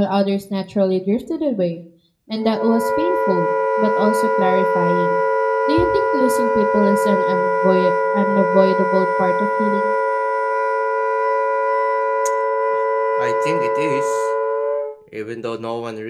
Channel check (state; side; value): identical; both; correlation 1.00